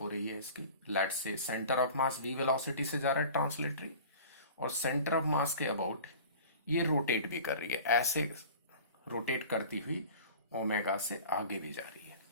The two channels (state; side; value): inverted; both; correlation -0.41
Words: रही है इसकी। Let's say centre of mass v velocity से जा रहा है ट्रांसलेटरी, और सेंटर ऑफ मास के अबाउट ये रोटेट भी कर रही है, ऐसे रोटेट करती हुई ओमेगा से आगे भी जा रही है,